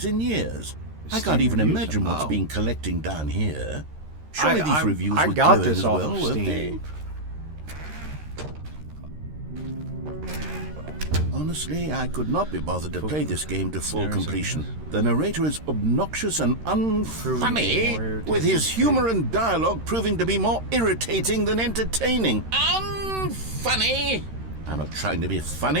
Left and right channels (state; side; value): late; left; 13 ms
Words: in years. I can't Steam even reviews? imagine what's Oh. been collecting down here. Surely these I reviews were got glowing this as off well, of weren't Steam. they? Honestly, I could not be bothered to play this game to full completion. The narrator is obnoxious and unfunny, with his humor and dialogue proving to be more irritating than entertaining. Unfunny? I'm not trying to be